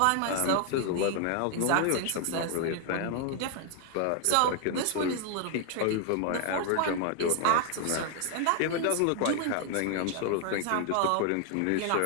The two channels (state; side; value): different; both; correlation 0.00